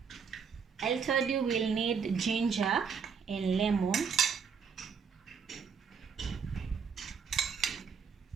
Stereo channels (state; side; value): quieter; left; 6.4 dB